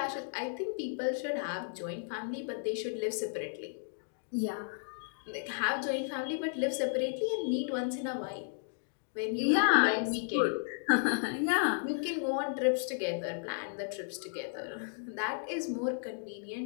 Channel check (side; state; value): right; silent; digital silence